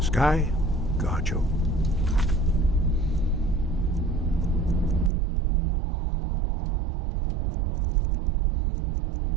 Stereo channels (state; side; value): drops out; left; at 5.1 s